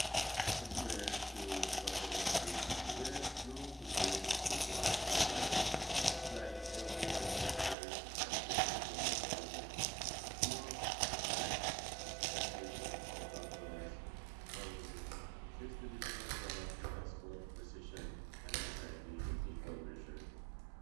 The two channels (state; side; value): drops out; left; at 7.8 s